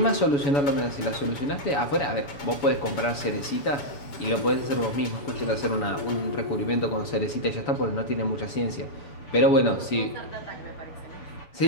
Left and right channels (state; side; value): late; right; 7.0 ms